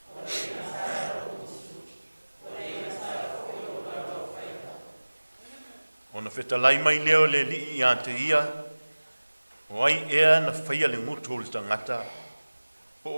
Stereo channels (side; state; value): both; inverted; correlation -1.00